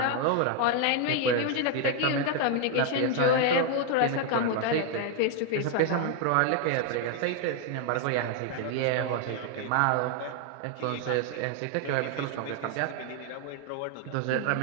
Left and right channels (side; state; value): both; different; correlation 0.00